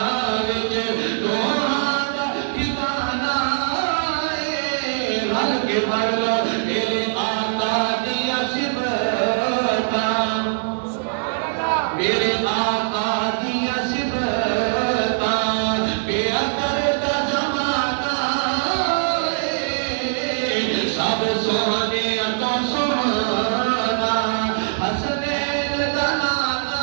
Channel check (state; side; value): silent; left; digital silence